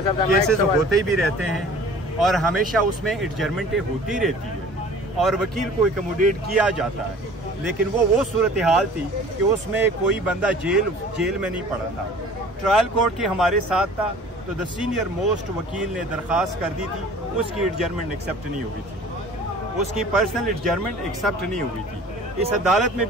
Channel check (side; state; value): both; normal; correlation 0.46